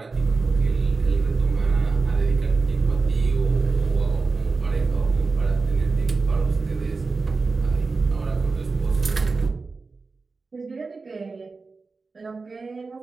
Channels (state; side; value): quieter; left; 4.1 dB